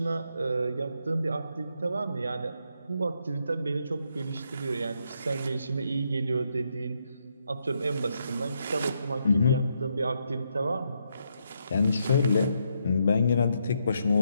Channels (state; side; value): inverted; both; correlation -0.78